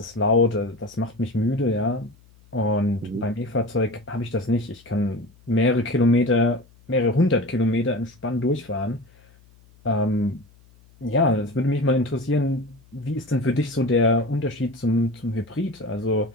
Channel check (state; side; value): noise; left; hum, 28 dB below the sound